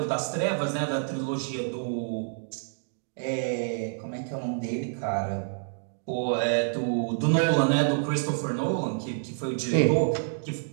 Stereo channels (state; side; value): silent; left; digital silence